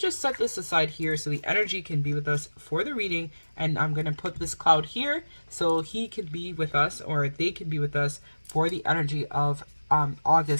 set this aside here so the energy can be with us for the reading, and I'm going to put this cloud here so he can be with us, or they can be with us for the energy of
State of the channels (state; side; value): inverted; both; correlation -1.00